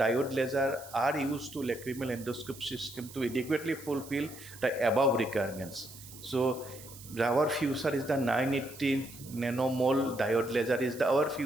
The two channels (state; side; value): noise; right; hiss, 17 dB below the sound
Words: laser are used to lacrimal endoscope system to adequately fulfill the above requirements. So our future is the 980 nanomole diode laser is our